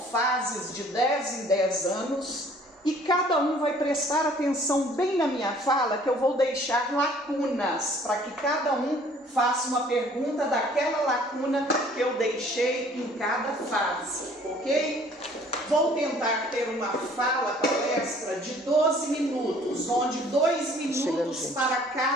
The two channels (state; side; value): normal; both; correlation 0.55